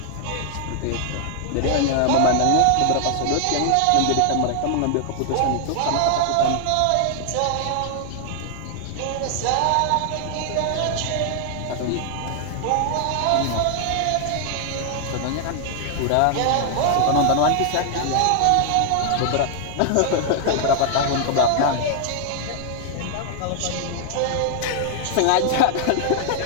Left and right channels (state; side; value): different; both; correlation 0.00